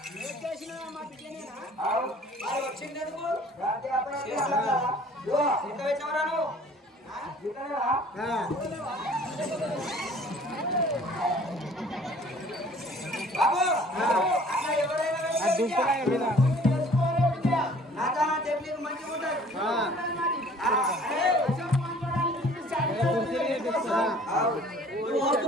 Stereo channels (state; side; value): normal; both; correlation 0.52